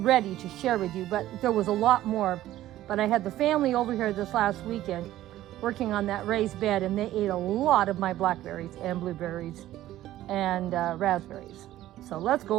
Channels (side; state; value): left; quieter; 14.2 dB